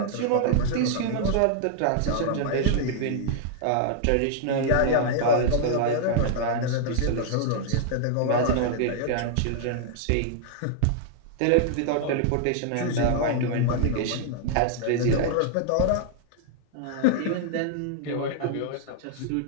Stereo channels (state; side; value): different; both; correlation -0.01